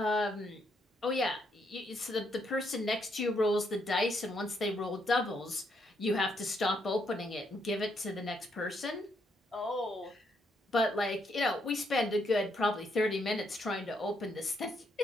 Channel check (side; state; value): both; normal; correlation 0.75